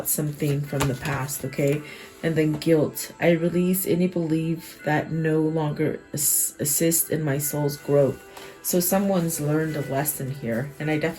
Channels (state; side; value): identical; both; correlation 1.00